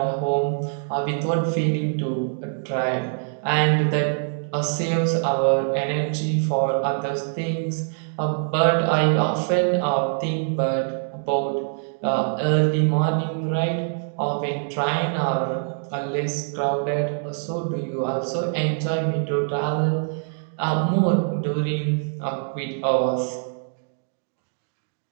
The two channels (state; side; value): silent; left; digital silence